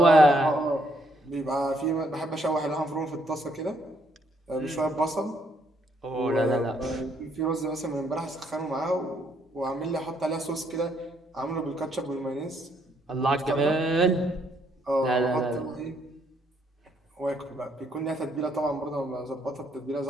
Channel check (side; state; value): both; normal; correlation 0.71